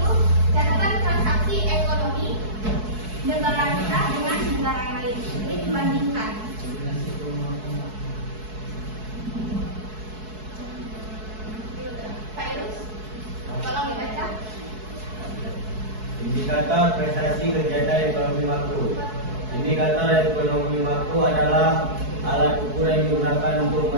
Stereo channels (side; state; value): left; late; 4.7 ms